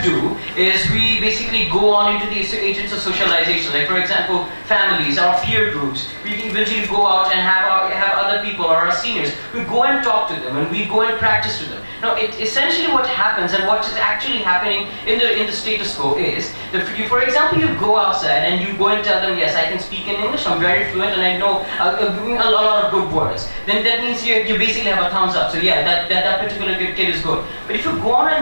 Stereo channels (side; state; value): both; inverted; correlation -1.00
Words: do is we basically go on into the agents of socialization. Like for example, families, our peer groups. We eventually go out and have other people or our seniors. We go and talk to them and we go and practice to them. Now, essentially what happens and what is actually happening in the status quo is that, for example, you go outside and you go and tell them, yes, I can speak in English, I'm very fluent and I know a lot of good words. Then that means you basically have a thumbs up. So yeah, that particular kid is good. But if you go on